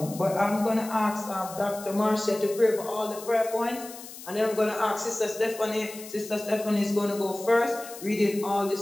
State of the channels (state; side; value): noise; left; hiss, 14 dB below the sound